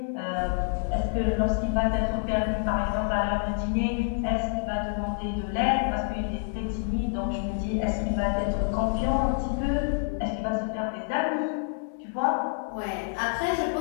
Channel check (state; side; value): silent; right; digital silence